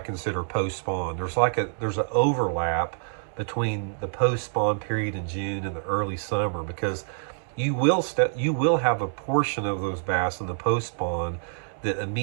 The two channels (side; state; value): left; silent; digital silence